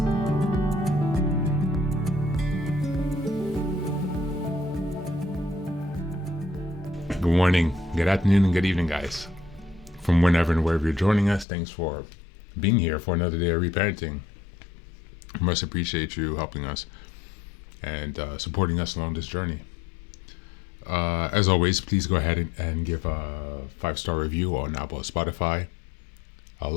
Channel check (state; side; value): drops out; right; at 11.5 s